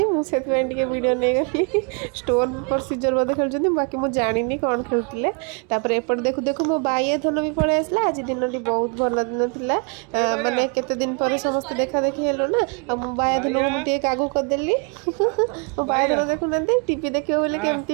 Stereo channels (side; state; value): left; quieter; 35.6 dB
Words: मुझे वीडियो नहीं गली स्टोन प्रोसीजर बोधे खेलुँच बाकी मुझे जानी कौन खेलुले एपटे देखु देखु मो बाइया धन भी पड़े आसला आज दिन टी बहुत भल दिन थिला माने केते दिन पर समस्त देखा देखी हेलो ना आ मो बाइया धन को मुझे आगू करदेली मो बाइया धन देखु ना टीवी देखियो बोले